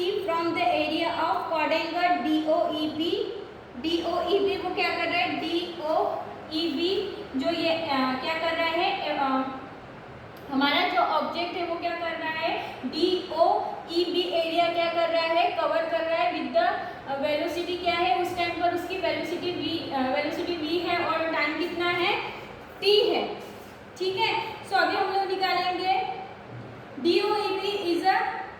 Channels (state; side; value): identical; both; correlation 1.00